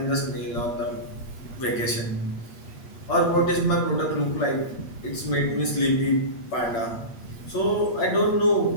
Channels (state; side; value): late; right; 8.7 ms